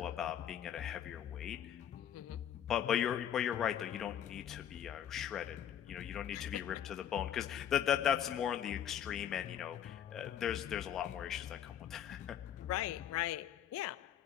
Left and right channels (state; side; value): quieter; right; 9.8 dB